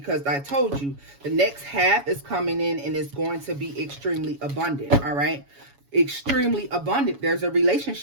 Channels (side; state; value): left; late; 7.1 ms